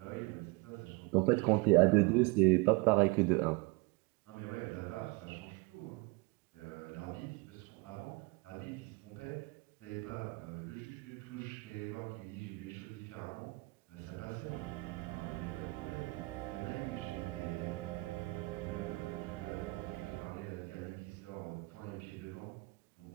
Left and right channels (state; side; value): quieter; left; 26.4 dB